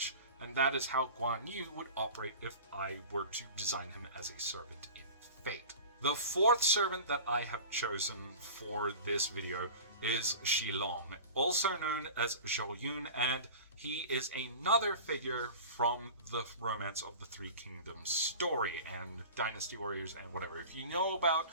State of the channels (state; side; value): inverted; both; correlation -0.37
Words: And that is how Guan Yu would operate if I were to design him as a servant in Fate. The fourth servant that I have chosen for this video is Shilong, also known as Zhou Yun, and he is another figure from the Romance of the Three Kingdoms story and Dynasty Warriors and whatever. If you know about